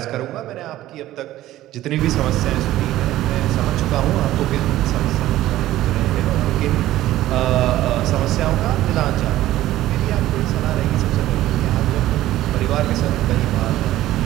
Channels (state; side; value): quieter; left; 14.8 dB